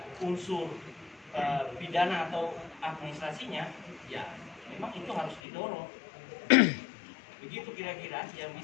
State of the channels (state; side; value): drops out; right; at 5.4 s